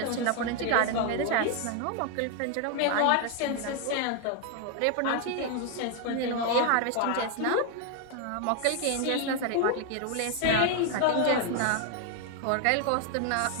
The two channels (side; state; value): both; different; correlation 0.00